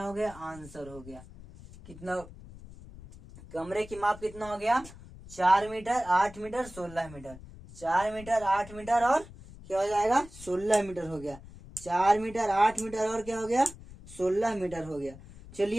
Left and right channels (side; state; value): left; noise; rumble, 17 dB below the sound